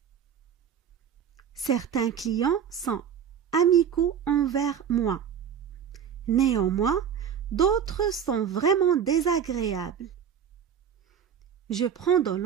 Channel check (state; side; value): quieter; left; 8.2 dB